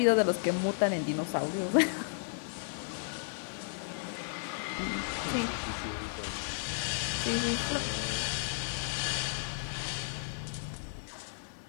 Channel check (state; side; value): silent; right; digital silence